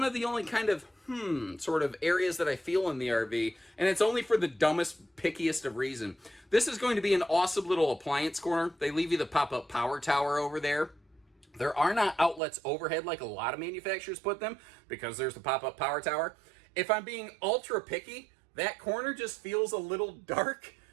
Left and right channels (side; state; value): left; drops out; at 12.4 s